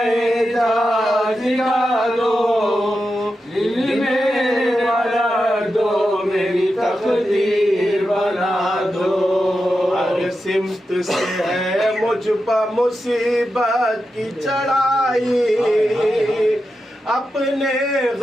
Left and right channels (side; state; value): both; normal; correlation 0.89